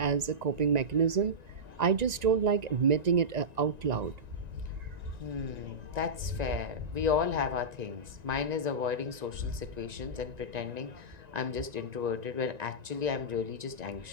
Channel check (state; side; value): late; left; 1.9 ms